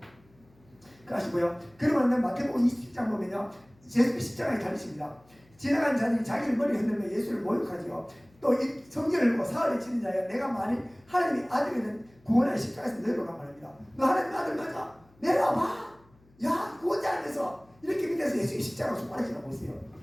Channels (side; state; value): left; noise; hum, 30 dB below the sound